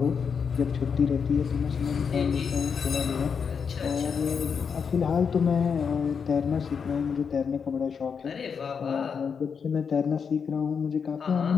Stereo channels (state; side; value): quieter; right; 6.3 dB